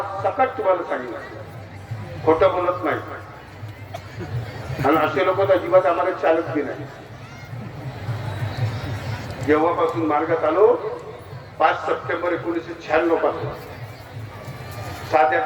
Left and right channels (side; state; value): both; identical; correlation 1.00